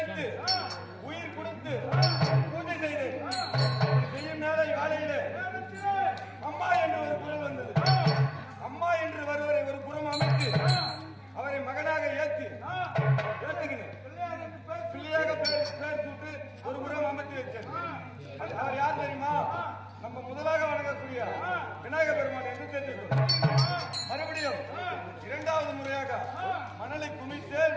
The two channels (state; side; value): identical; both; correlation 1.00